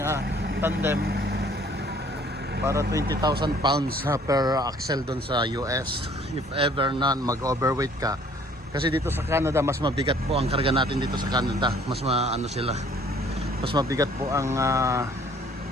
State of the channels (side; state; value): both; normal; correlation 0.58